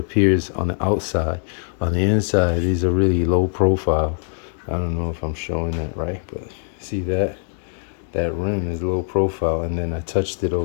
on the outside. On the inside, these are really low profile. I don't know if I'm showing that right, but see that rim is low profile. And then I touched it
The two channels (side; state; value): right; silent; 59 dB below the other